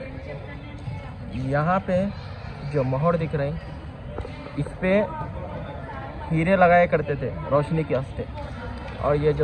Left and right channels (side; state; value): both; identical; correlation 1.00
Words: यहाँ पे जो मोहर दिख रहे हैं, इस पे हीरे लगाए करते थे रोशनी के वास्ते। और ये